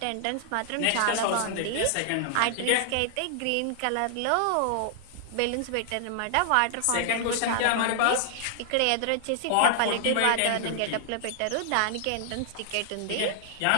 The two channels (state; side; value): different; both; correlation -0.01